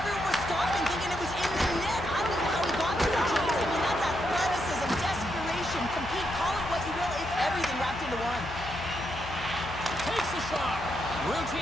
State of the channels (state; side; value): noise; left; hum, 11 dB below the sound